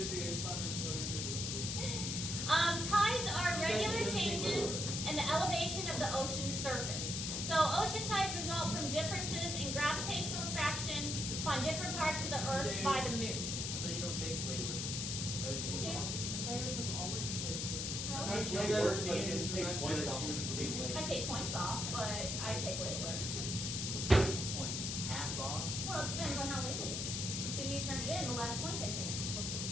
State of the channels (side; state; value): left; noise; hiss, 2 dB below the sound